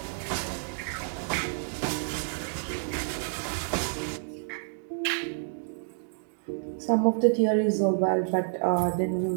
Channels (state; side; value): silent; left; digital silence